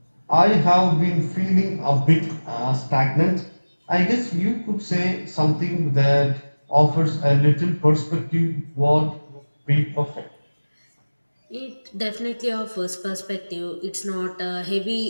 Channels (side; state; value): both; inverted; correlation -1.00